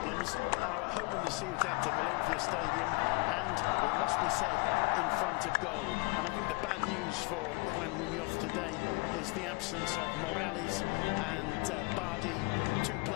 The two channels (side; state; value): right; quieter; 30.4 dB